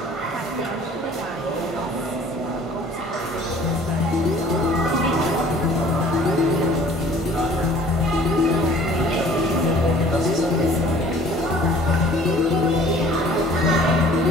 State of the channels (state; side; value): normal; both; correlation 0.51